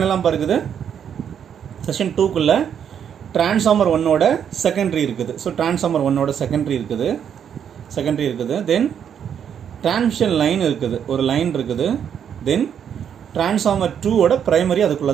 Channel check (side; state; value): left; quieter; 8.4 dB